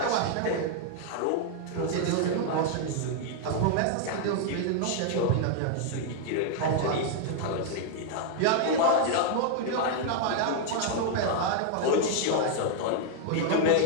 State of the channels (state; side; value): different; both; correlation 0.00